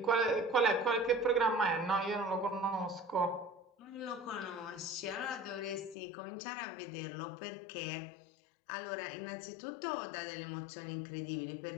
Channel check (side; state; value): right; drops out; at 6.0 s